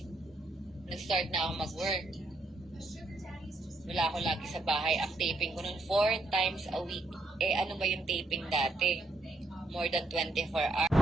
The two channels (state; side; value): normal; both; correlation 0.76